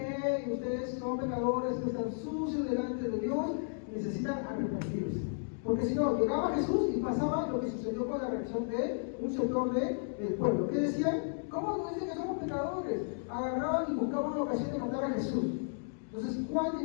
ustedes son pecadores, están sucios delante de Dios, necesitan arrepentirse. Porque si no, llegaba Jesús y pasaba lo que sucedió con la reacción de un sector del pueblo. ¿Qué decían? ¿Cómo nos dicen que somos pecadores? Agarraban y buscaban una ocasión de matar a Jesús. Entonces Juan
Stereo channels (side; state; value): right; silent; digital silence